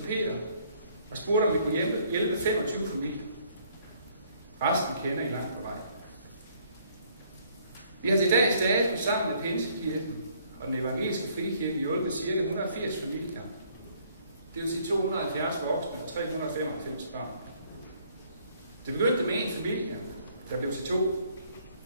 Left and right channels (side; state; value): both; inverted; correlation -0.64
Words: og spurgte, om vi kunne hjælpe 25 familier. Resten kender I langt på vej. Vi har til dags dato sammen med Pinsekirken og den evangeliske frikirke hjulpet ca. 180 familier. Det vil sige 270 voksne og 395 børn. Det begyndte med en familie, der blev til 2,